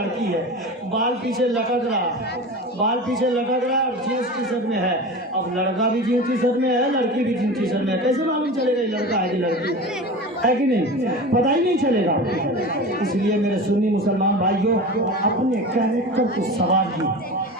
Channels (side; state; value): both; normal; correlation 0.31